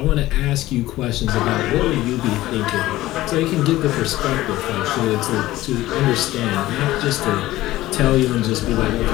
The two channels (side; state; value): right; quieter; 16.4 dB